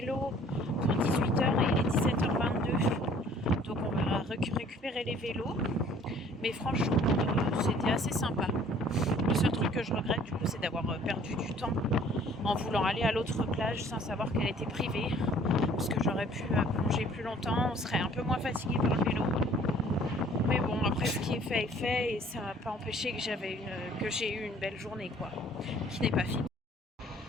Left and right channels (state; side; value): normal; both; correlation 0.55